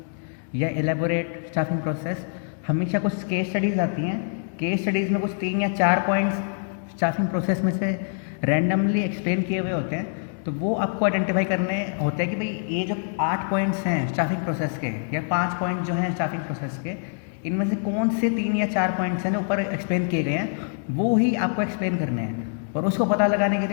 या एलेबोरेट स्टाफिंग प्रोसेस। हमेशा कुछ केस स्टडीज़ आती हैं। केस स्टडीज़ में कुछ 3 या 4 पॉइंट्स स्टाफिंग प्रोसेस में से रैंडमली एक्सप्लेन किए हुए होते हैं। तो वो आपको आइडेंटिफाई करने होते हैं कि भाई ये जो 8 पॉइंट्स हैं स्टाफिंग प्रोसेस के या 5 पॉइंट जो हैं स्टाफिंग प्रोसेस के, इनमें से कौन से 3 या 4 पॉइंट्स हैं जो ऊपर एक्सप्लेन किए गए हैं वो ही आपको एक्सप्लेन करने हैं। और उसको पता लगाने के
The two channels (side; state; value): right; silent; digital silence